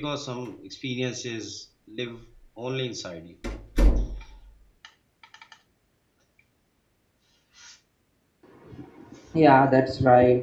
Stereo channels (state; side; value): identical; both; correlation 1.00